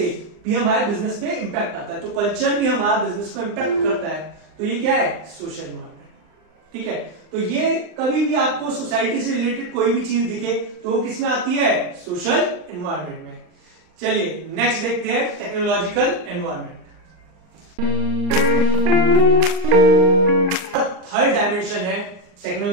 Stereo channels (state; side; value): late; left; 39 ms